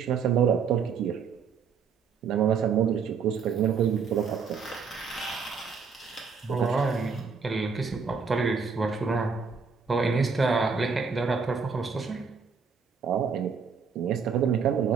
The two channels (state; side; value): quieter; left; 5.8 dB